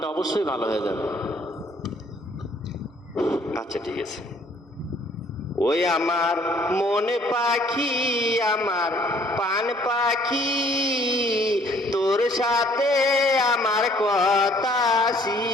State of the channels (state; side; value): normal; both; correlation 0.60